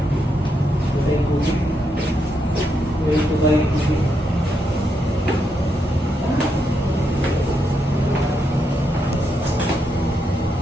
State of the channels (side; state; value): both; normal; correlation 0.81